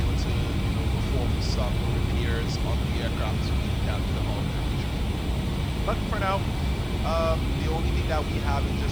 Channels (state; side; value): noise; left; hiss, 25 dB below the sound